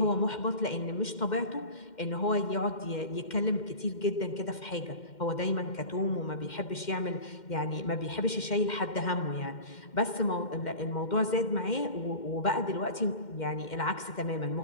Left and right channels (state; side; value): late; right; 2.1 ms